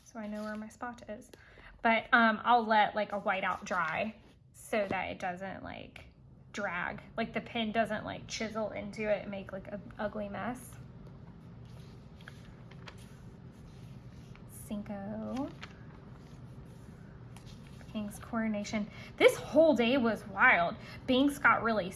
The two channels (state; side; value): identical; both; correlation 1.00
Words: so I know where my spot is. But I'll let like a whiteout dry so that it doesn't like drag, like the pen doesn't like chisel into it and make like an ugly mess. Cinco. King's coronation. This whole day was wild. Binks got really